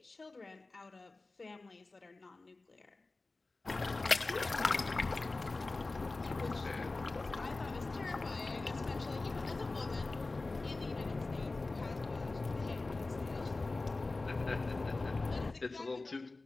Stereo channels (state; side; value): quieter; right; 3.4 dB